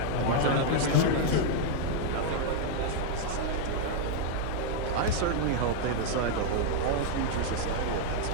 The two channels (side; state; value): both; different; correlation 0.00